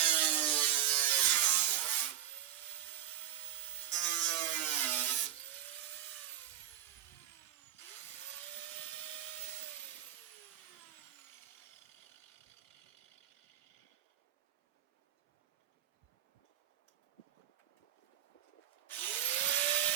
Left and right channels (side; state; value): left; quieter; 11.1 dB